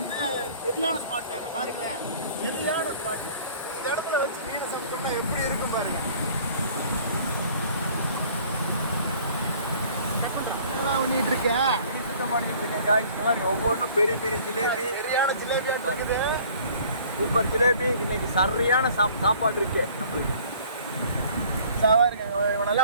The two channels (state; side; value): inverted; both; correlation -0.53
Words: சரியான ஸ்பாட் அங்கே பாருங்களேன், சரியான ஸ்பாட்டு. இந்த இடத்துல வச்சு மீன் சாப்பிட்டோம்னா எப்படி இருக்கும் பாருங்கள். பண்ணிட்டு இருக்கேன், சுத்தம் பண்ணிட்டு இருக்கேன். இந்த மாதிரி ஒவ்வொன்றும் பெரிய பெரிய ஜிலேபி, சரியான ஜிலேபியா இருக்குது. சூப்பர் ஜிலேபி. இன்னைக்கு சரியான சாப்பாடு இருக்கு நம்மளுக்கு. பாருங்க,